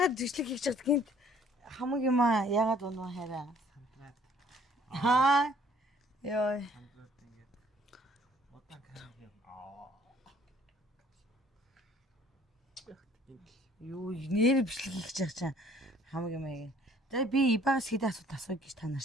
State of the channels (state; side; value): normal; both; correlation 0.58